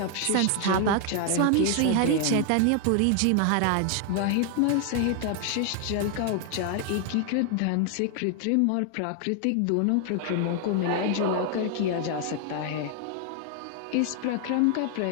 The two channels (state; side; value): different; both; correlation 0.00